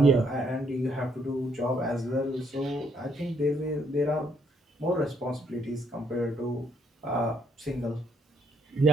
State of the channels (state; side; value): normal; both; correlation 0.71